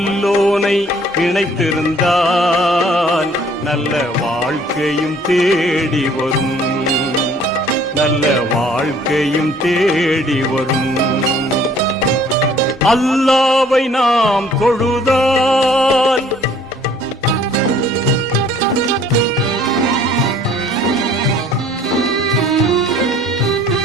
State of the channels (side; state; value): both; normal; correlation 0.57